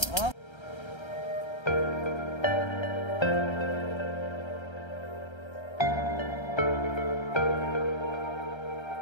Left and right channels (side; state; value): right; late; 1.3 ms